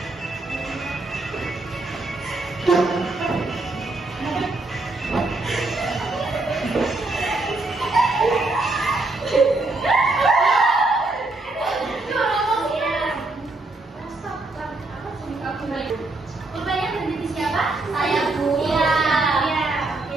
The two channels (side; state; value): left; quieter; 3.0 dB